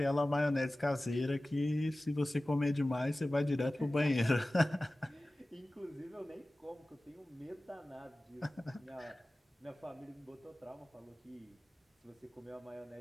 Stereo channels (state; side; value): normal; both; correlation 0.97